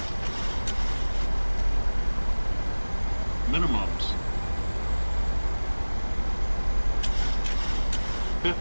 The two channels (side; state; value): both; inverted; correlation -1.00